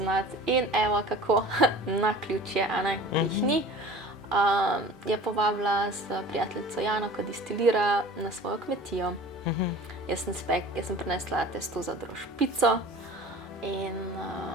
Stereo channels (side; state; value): both; normal; correlation 0.42